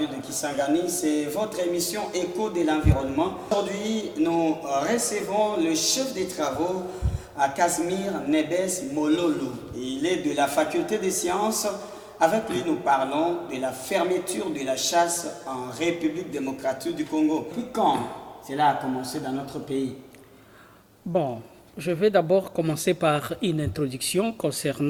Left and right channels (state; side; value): identical; both; correlation 1.00